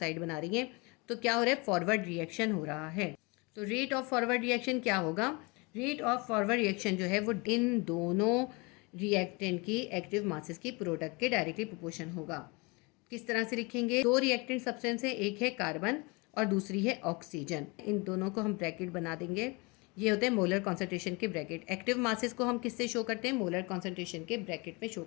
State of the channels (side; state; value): right; quieter; 27.8 dB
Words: बना रही हैं, तो क्या हो रहा है, फॉरवर्ड रिएक्शन हो रहा है। तो रेट ऑफ फॉरवर्ड रिएक्शन क्या होगा, रेट ऑफ फॉरवर्ड रिएक्शन जो है वो इन दोनों रिएक्टेंट की एक्टिव मासेस की प्रोडक्ट के डायरेक्टली प्रोपोर्शन होगा। किस तरह से लिखेंगे, 2 रिएक्टेंट सब्सटेंस है, एक है कार्बन और दूसरी है ऑक्सीजन, इन दोनों को हम ब्रैकेट बना देंगे, ये होते हैं मोलर कॉन्सेंट्रेशन के ब्रैकेट। एक्टिव मासेस को हम किससे शो करते हैं, मोलर कॉन्सेंट्रेशन के ब्रैकेट में शो